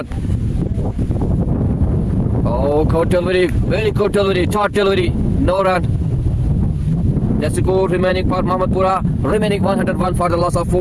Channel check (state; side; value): identical; both; correlation 1.00